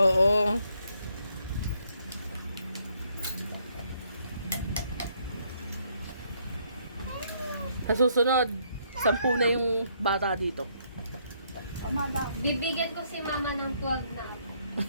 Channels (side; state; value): both; inverted; correlation -0.70